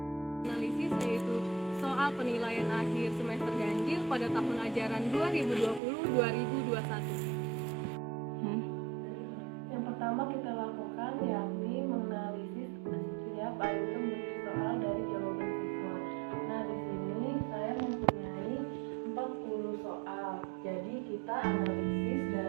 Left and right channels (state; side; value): drops out; left; at 5.8 s